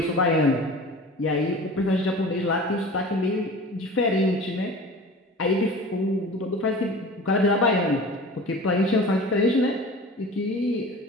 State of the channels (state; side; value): normal; both; correlation 0.38